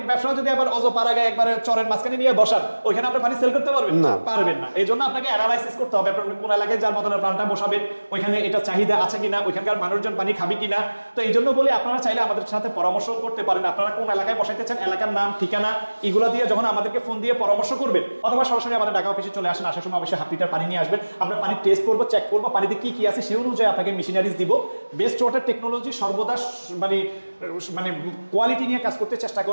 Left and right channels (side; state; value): both; inverted; correlation -1.00